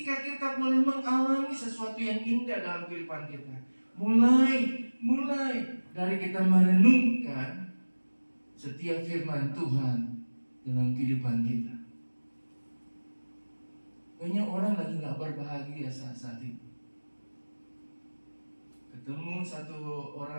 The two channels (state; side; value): inverted; both; correlation -1.00